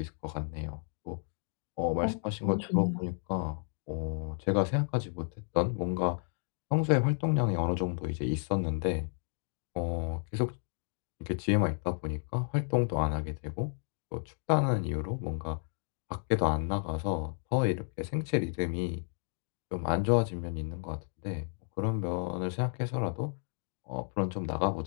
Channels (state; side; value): silent; right; 56 dB below the other